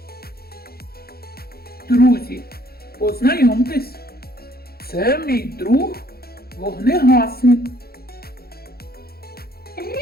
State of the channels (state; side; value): late; right; 0.45 ms